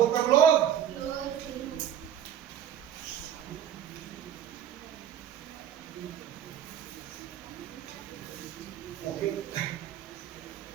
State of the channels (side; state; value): left; quieter; 9.9 dB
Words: हैं? क्लोज। ओके,